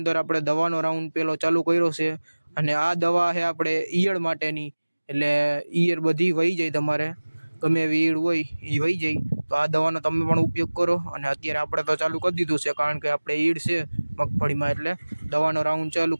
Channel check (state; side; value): inverted; both; correlation -1.00